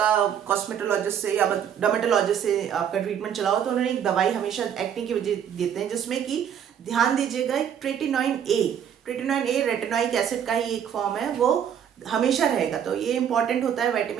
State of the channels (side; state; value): left; quieter; 8.8 dB